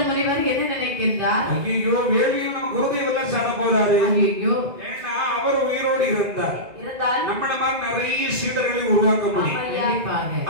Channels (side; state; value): left; late; 2.0 ms